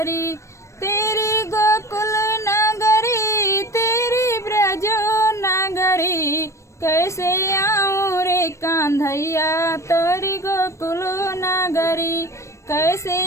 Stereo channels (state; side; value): late; right; 0.14 ms